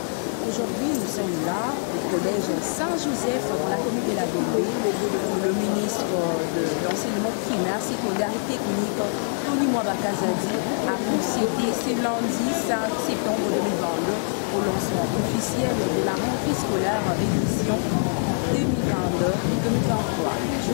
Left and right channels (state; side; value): silent; right; 62 dB below the other